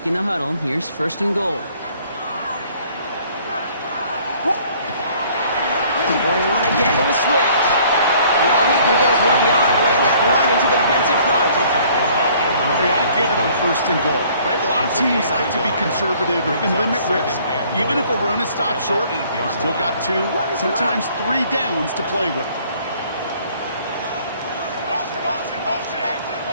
the huddle, here's 1st and goal. Going one again with Swift. And all he can get is 1 yard, ran that right into the defensive front. Hey, I get it on 1st and goal, right? A lot of teams like to be conservative and limit risk. Even if a run is stopped short, you still got 2, sometimes 3 downs to play with.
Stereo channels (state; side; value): inverted; both; correlation -0.57